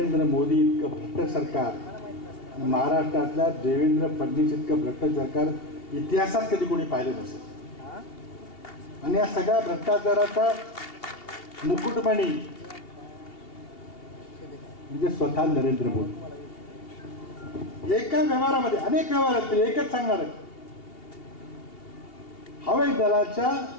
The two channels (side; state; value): right; late; 2.8 ms